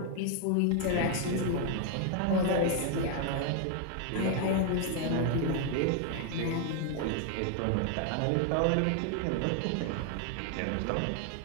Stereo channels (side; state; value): both; different; correlation 0.00